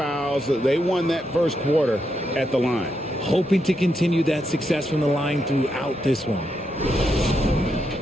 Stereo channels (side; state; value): both; normal; correlation 0.82